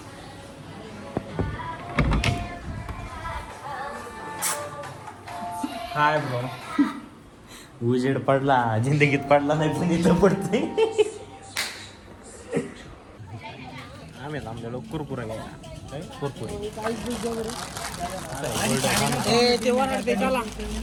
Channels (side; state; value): both; identical; correlation 1.00